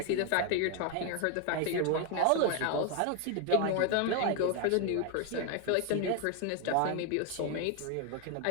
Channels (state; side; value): different; both; correlation 0.01